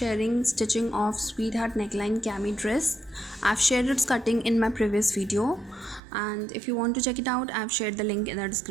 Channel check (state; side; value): drops out; left; at 6.0 s